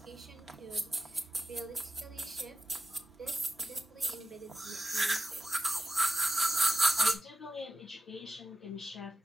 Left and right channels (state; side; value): normal; both; correlation 0.89